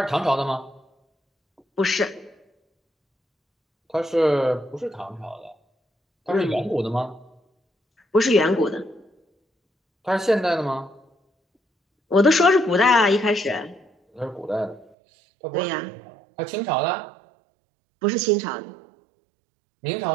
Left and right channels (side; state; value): left; drops out; at 14.9 s